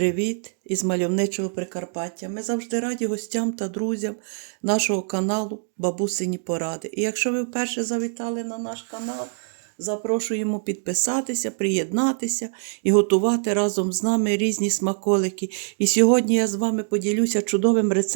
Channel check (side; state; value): left; silent; 62 dB below the other